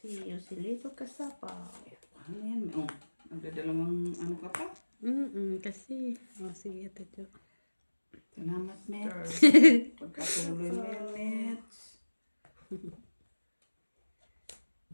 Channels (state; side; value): inverted; both; correlation -1.00